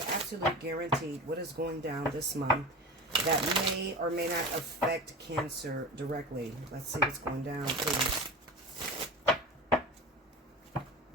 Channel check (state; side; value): normal; both; correlation 0.30